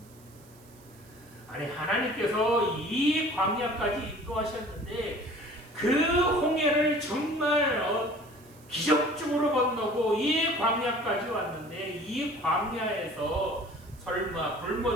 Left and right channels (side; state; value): right; noise; hiss, 26 dB below the sound